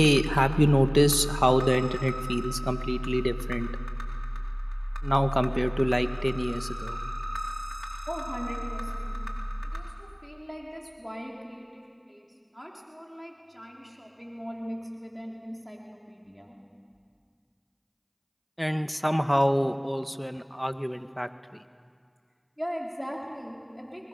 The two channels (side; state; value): both; identical; correlation 1.00